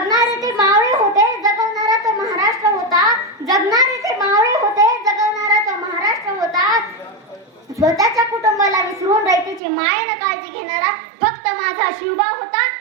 ते मावळे होते, जगवणारा तो महाराष्ट्र होता. स्वतःच्या कुटुंबाला विसरून रयतेची मायेने काळजी घेणारा फक्त माझा शिवबा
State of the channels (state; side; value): drops out; left; at 9.6 s